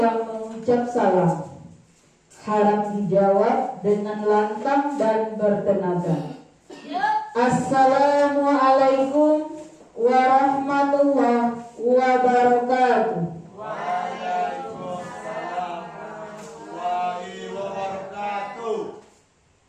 mengucap salam, harap dijawab dengan lantang dan bertenaga. Assalamualaikum warahmatullahi wabarakatuh. Waalaikumsalam warahmatullahi wabarakatuh.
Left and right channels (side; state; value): both; identical; correlation 1.00